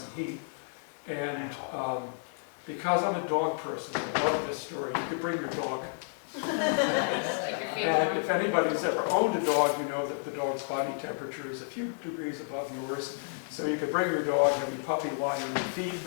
heat. And because I'm a dog person, I love this story. You could bring your dog. And if anybody's ever owned a dog, you know that the dog's body temperature is a few degrees above yours. So you could bring your dog, have your puppy lie on your feet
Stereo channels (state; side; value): silent; right; digital silence